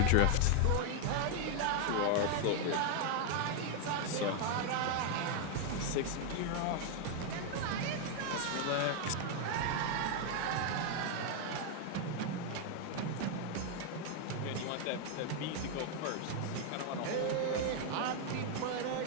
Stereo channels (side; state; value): both; different; correlation 0.01